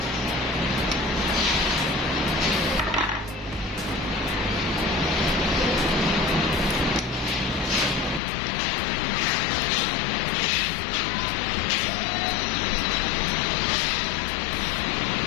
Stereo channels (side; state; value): right; drops out; at 8.2 s